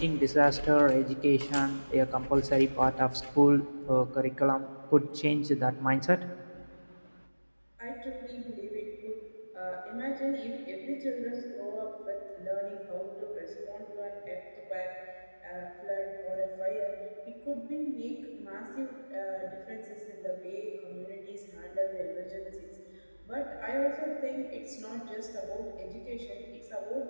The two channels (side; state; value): both; inverted; correlation -1.00